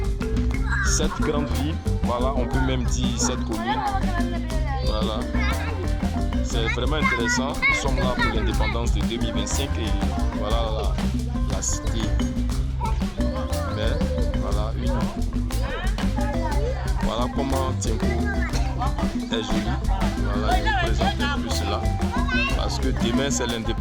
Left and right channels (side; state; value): both; identical; correlation 1.00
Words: cette grande ville. Voilà, on peut même dire cette commune. Voilà. C'est vraiment intéressant. Nous sommes là pour l'indépendance de 2025 et voilà la cité. Mais voilà comment Tienko est joli. Voilà, je vous présente un peu cela. Parce que demain c'est